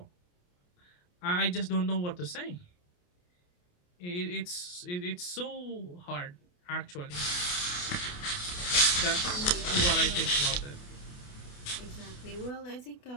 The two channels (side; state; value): right; late; 28 ms